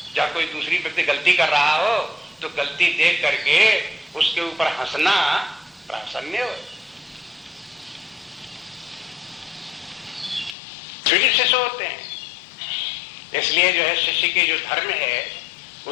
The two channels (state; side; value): drops out; right; at 10.6 s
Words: जब कोई दूसरी व्यक्ति गलती कर रहा हो तो गलती देख करके उसके ऊपर हंसना प्रासन्य हो। फिर शिष्य होते हैं। इसलिए जो है शिष्य के जो धर्म है,